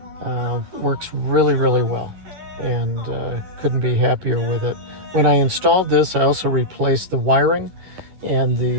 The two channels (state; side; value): late; left; 11 ms